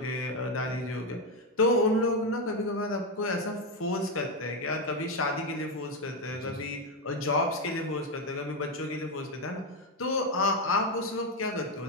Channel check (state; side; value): normal; both; correlation 0.07